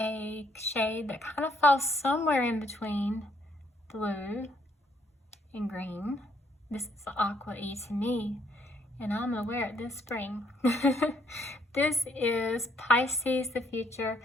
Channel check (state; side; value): normal; both; correlation 0.69